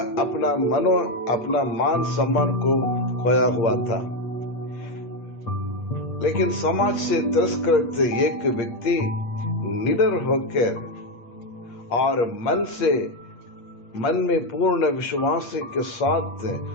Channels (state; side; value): late; right; 8.5 ms